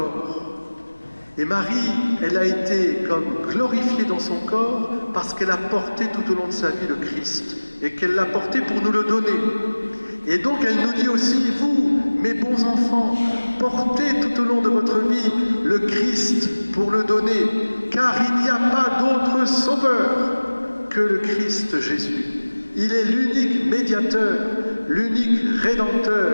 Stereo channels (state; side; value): inverted; both; correlation -1.00